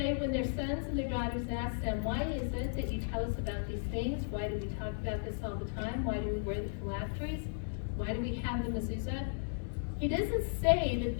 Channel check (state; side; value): silent; right; digital silence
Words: when their sons and their daughters ask them, why is it that you tell us about these things? Why do we talk about this all the time? Why do we wear the phylacteries? Why do we have the mezuzah? He doesn't say that